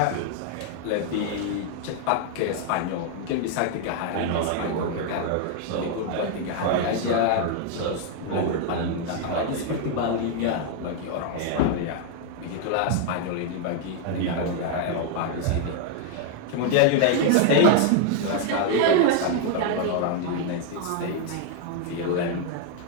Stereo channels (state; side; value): different; both; correlation 0.00